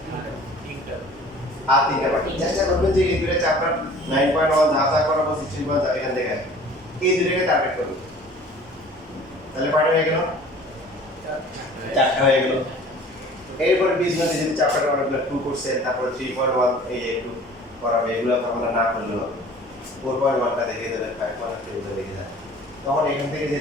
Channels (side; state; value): both; normal; correlation 0.47